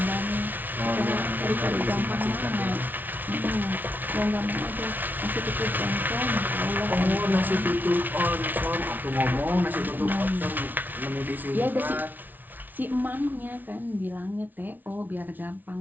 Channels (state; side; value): late; left; 0.084 ms